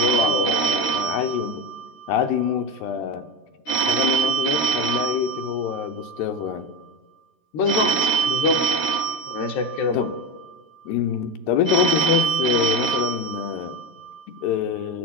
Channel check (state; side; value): late; right; 13 ms